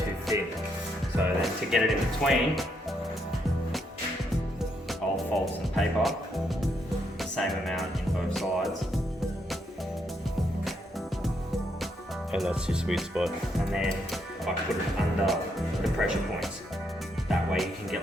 thin. So then to get it in between, I'll fold some paper, the same amount in both sides. And that's your sweet spot. And then I put it under the pressure points. That way you can get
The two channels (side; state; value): both; normal; correlation 0.77